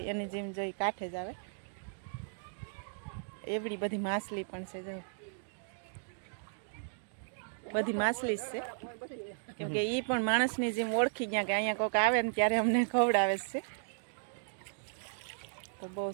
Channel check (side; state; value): left; silent; digital silence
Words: એની જેમ જોઈ કાંઠે જ આવે. એવડી બધી માછલી પણ છે, જો બધી માછલી જ છે, કેમ કે એ પણ માણસની જેમ ઓળખી ગયા કે અહીંયા કોઈક આવે ને ત્યારે અમને ખવડાવે છે. તો બહુ